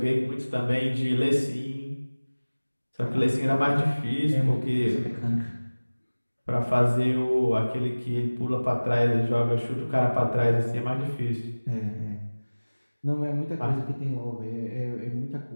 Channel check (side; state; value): both; inverted; correlation -1.00